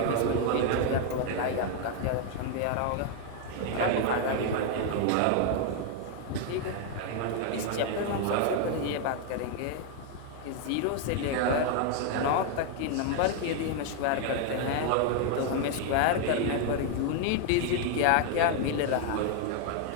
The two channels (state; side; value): different; both; correlation 0.00